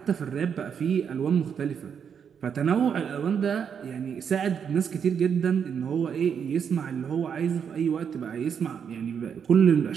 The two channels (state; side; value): quieter; left; 7.4 dB